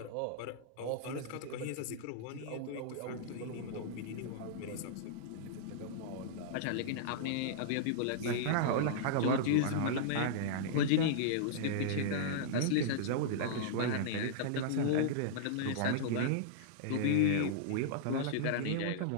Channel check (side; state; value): both; different; correlation -0.02